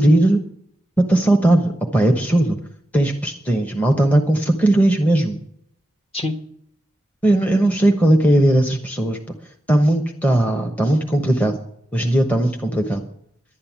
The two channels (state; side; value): normal; both; correlation 0.91